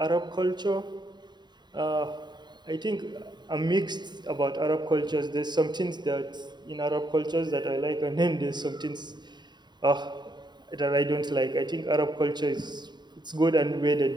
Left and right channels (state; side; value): late; left; 0.21 ms